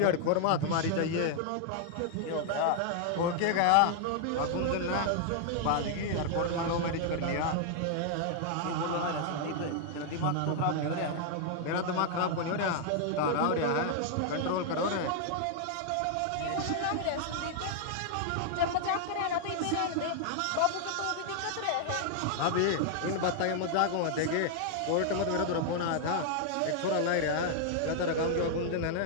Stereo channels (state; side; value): different; both; correlation 0.00